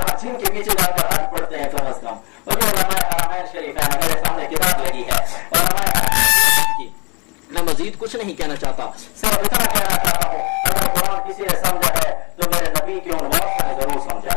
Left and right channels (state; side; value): quieter; right; 32.8 dB